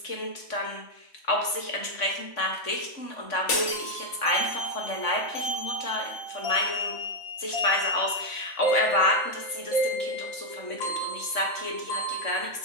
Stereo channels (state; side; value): late; right; 3.6 ms